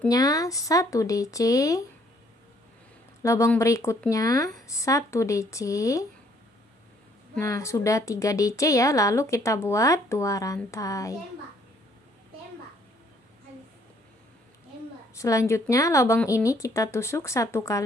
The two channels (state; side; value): normal; both; correlation 0.64